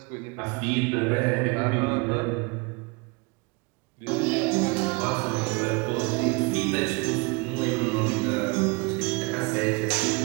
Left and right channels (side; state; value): left; quieter; 28.8 dB